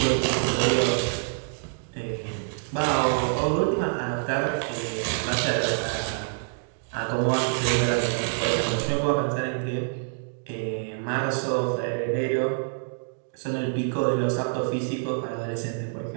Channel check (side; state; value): left; silent; digital silence